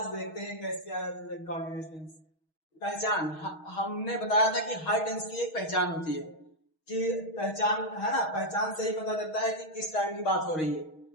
देखते हैं कैसे है प्रेजेंट कॉन्टिन्यूअस टेंस। पहचान, हमने बताया था कि हर टेंस की एक पहचान होती है, कि पहचान है ना, पहचान से ही पता चलता है कि किस टाइम की बात हो रही है।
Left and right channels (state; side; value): late; right; 6.3 ms